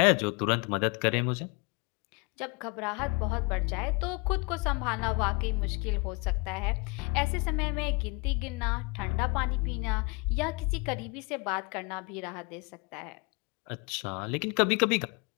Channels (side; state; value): right; quieter; 29.2 dB